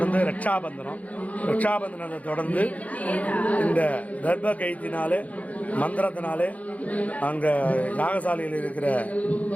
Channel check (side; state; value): right; late; 0.069 ms